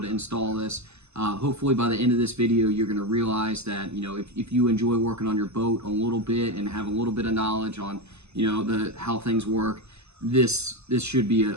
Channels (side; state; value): left; late; 0.80 ms